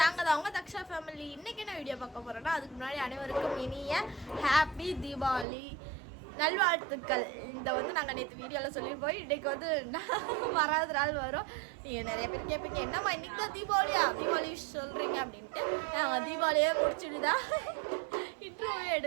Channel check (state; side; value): drops out; left; at 5.5 s